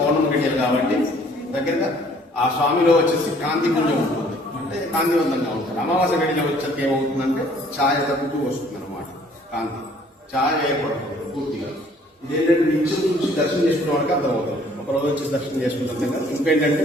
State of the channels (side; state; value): both; normal; correlation 0.58